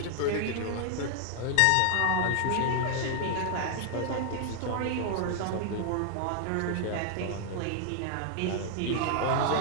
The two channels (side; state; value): both; different; correlation 0.00